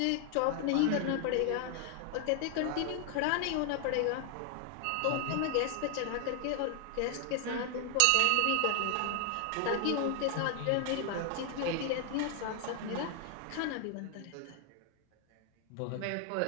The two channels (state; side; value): different; both; correlation 0.00